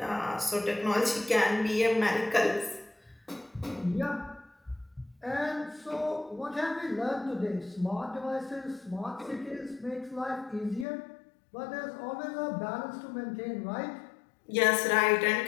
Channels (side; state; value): right; drops out; at 10.9 s